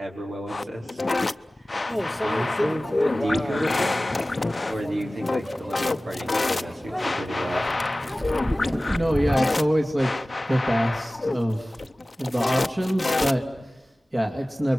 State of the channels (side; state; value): both; normal; correlation 0.97